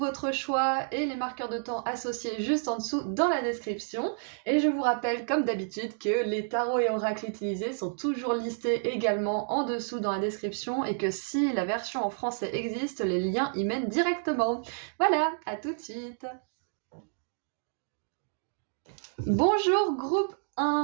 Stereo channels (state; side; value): silent; left; digital silence